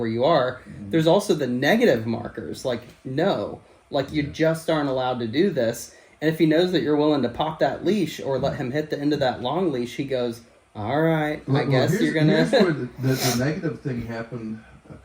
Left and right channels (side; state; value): both; identical; correlation 1.00